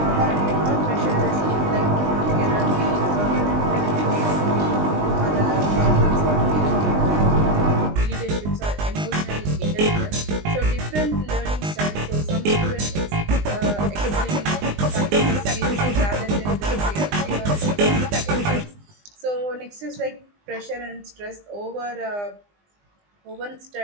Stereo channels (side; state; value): left; late; 20 ms